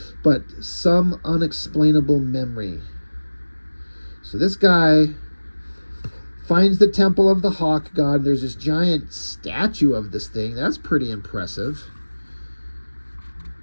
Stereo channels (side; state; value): both; inverted; correlation -1.00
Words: but some unexplainable memory. So this guy finds the temple of the hawk god. There's this giant statue of this thing. That's pretty impressive.